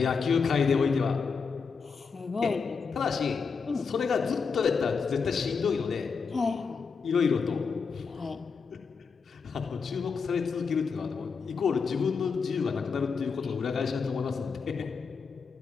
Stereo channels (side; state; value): right; quieter; 5.4 dB